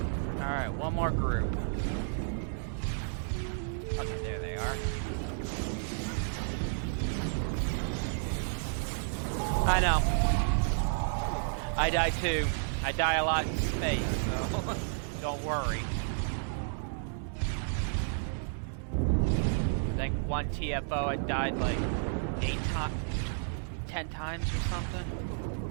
Alright, one more group. Okay, there they are. I know. I die too. I die a lot in space, so don't worry. I think one TFO I died like 10 times or something.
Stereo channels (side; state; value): left; silent; digital silence